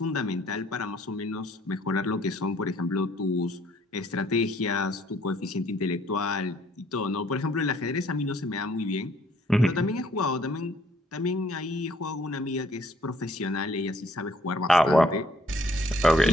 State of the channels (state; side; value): normal; both; correlation 0.63